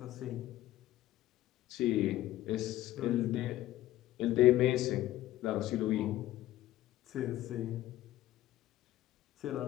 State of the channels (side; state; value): right; quieter; 14.8 dB